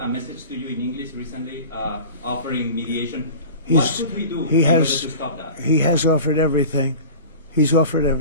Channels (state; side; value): inverted; both; correlation -0.37